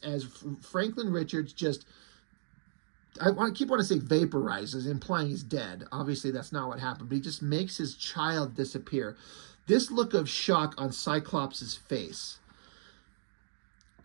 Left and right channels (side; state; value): left; silent; digital silence